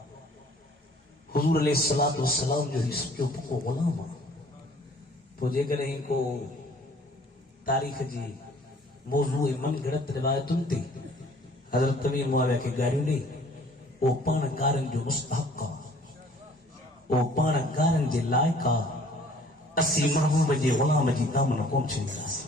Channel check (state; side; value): normal; both; correlation 0.54